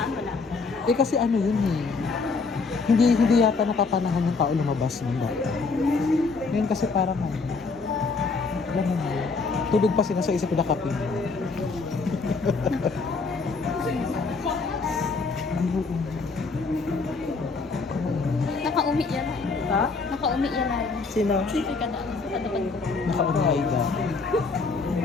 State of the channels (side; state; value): right; quieter; 4.3 dB